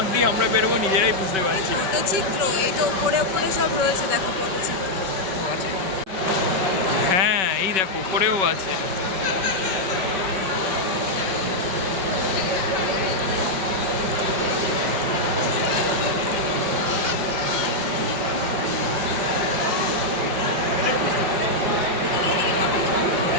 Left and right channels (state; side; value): late; left; 5.3 ms